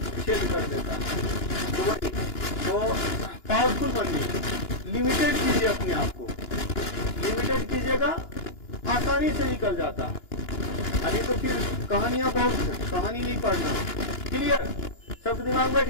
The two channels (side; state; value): right; late; 2.9 ms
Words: कर देता है। तो वही तो पावरफुल बनिए, लिमिटेड कीजिए अपने आप को, लिमिटेड कीजिएगा, आसानी से निकल जाता है। अभी तो फिर कहानियां बहुत हैं, कहानी नहीं पढ़ना। क्लियर, सब दिमाग बैठ